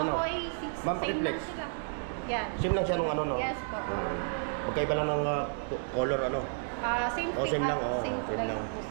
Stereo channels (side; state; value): left; silent; 57 dB below the other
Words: Oppo A6, Ma'am, same pakiflex. lang sila. Yan. Same lang siya nung ano, no? Yes po. Magkaiba lang ng color, ano? Same Oh, same lang, oh, same same lang lang. po,